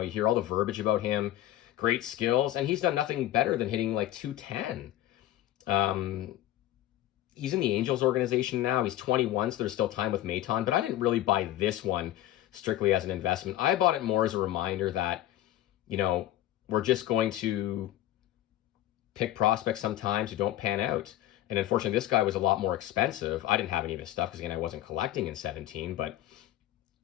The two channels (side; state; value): right; quieter; 13.8 dB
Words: hear all the verbiage about him, great skills, and he's done nothing better than hitting like 210. He's in the Angels organization now. He's 21, so there's still time with Maiton, but I didn't really buy this one strictly as an investment. I bought it more as a reminder that, we're just going to pick prospects sometimes who don't pan out. And unfortunately, this guy was a lot more expensive. I didn't have any of his stuff because, again, I wasn't collecting in 17. But,